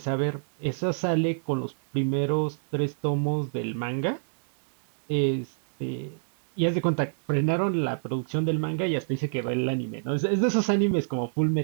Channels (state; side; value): silent; left; digital silence